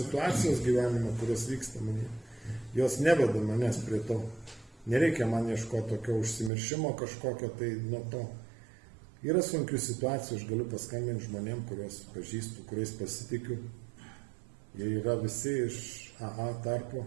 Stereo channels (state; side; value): drops out; left; at 6.5 s